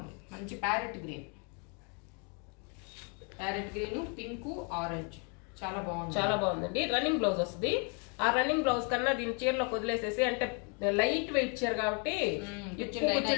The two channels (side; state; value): right; quieter; 35.3 dB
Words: మంచి ప్యారెట్ గ్రీన్, పింక్, ఆరెంజ్ చాలా బాగుంది. చాలా బాగుందండి. రన్నింగ్ బ్లౌజ్ వస్తుంది. ఆ రన్నింగ్ బ్లౌజ్ కన్నా దీని చీరలో వదిలేసేసి, అంటే లైట్ వెయిట్ చీర కాబట్టి